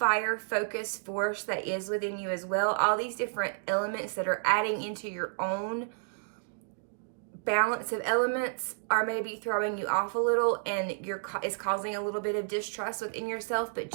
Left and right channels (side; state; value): left; silent; digital silence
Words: focus force that is within you as well. All these different elements that are adding into your own balance of elements are maybe throwing you off a little, and it's causing a little bit of distrust within yourself. But